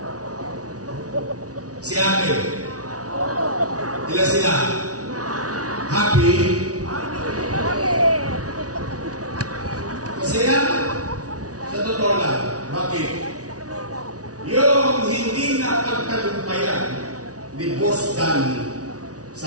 Si ate. Ila sila. Happy. Masaya. Sa totoo lang. Bakit? Yung hindi na pagtagumpayan ni Boss Danny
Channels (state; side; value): late; left; 0.68 ms